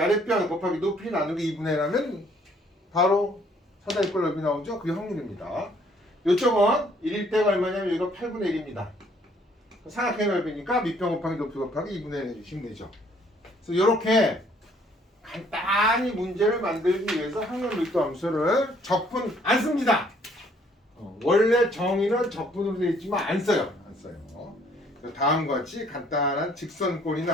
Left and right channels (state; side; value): normal; both; correlation 0.63